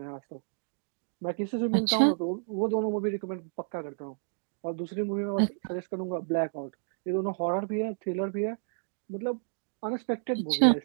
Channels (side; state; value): left; silent; digital silence